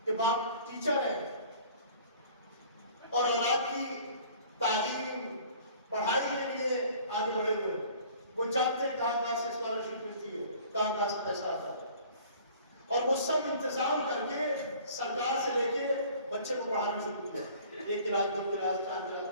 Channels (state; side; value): inverted; both; correlation -0.50